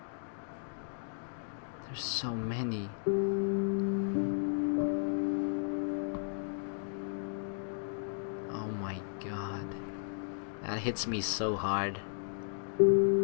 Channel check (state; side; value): silent; right; digital silence